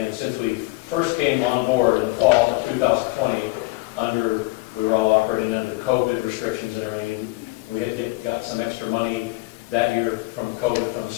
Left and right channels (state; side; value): quieter; right; 22.7 dB